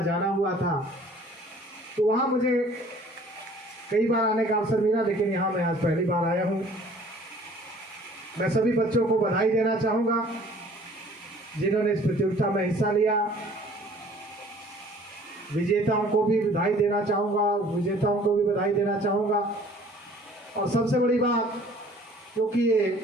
जाना हुआ था, तो वहाँ मुझे कई बार आने का अवसर मिला, लेकिन यहाँ मैं आज पहली बार आया हूँ। मैं सभी बच्चों को बधाई देना चाहूँगा जिन्होंने इस प्रतियोगिता में हिस्सा लिया। विजेताओं को भी बधाई देना चाहूँगा, और सबसे बड़ी बात, क्योंकि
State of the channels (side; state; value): both; normal; correlation 0.52